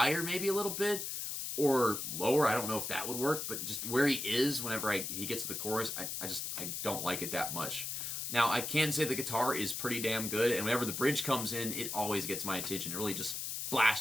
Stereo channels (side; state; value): left; noise; hiss, 4 dB below the sound